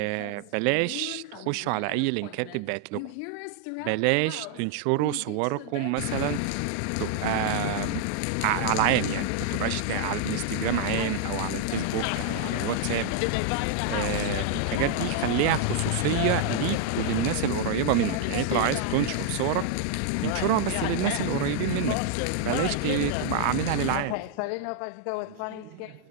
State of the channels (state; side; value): different; both; correlation 0.00